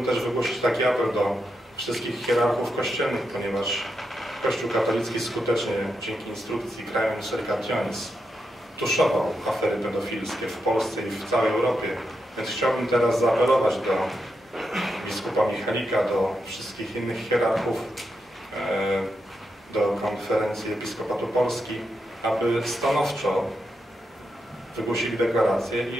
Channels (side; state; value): both; normal; correlation 0.85